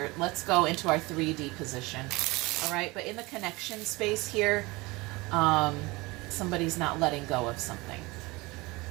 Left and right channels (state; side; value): quieter; left; 23.2 dB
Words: Let's go into our 3D position. All right, but in the connection space here, somebody's not letting go of something.